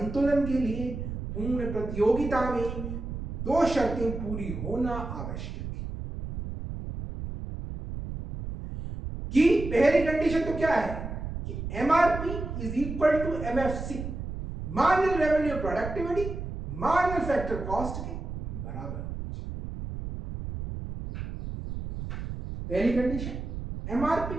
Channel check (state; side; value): noise; right; rumble, 7 dB below the sound